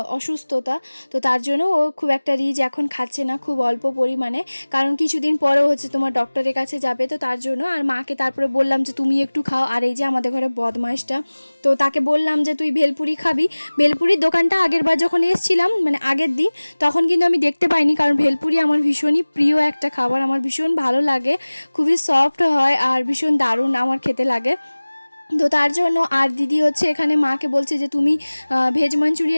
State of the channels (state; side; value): inverted; both; correlation -1.00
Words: অসুস্থতা, তো তার জন্য ও খুব একটা রিচ এখন খাচ্ছে না, খুব অল্প পরিমাণে, কারণ কিছুদিন পরেও হচ্ছে তোমার ডক্টরের কাছে যাবে, তো তার জন্য। আর মাকে তারপরে বললাম যে তুমি একটু খাও। আর এই যে আমাদের ঘরে বদমাইশটা, তো তাকে বললাম যে তুই ভেলপুরি খাবি। ভেলপুরির দোকানটা আগের বার যখন এসেছিলাম মানে আগের দিন, তখন কিন্তু আমি দেখতে পাইনি, কারণ ভেলপুরি আমার ভীষণই প্রিয় একটা খাবার, আমার ভীষণ ভালো লাগে, খুবই সফট হয় আর ভীষণ দারুণ আমার খেতে লাগে। তো তার জন্য আর দিদি হচ্ছে এখানে মাকে বলছে যে তুমি ভেজ